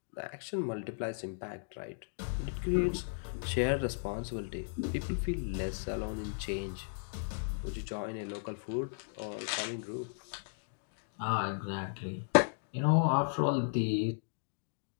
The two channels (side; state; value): right; silent; digital silence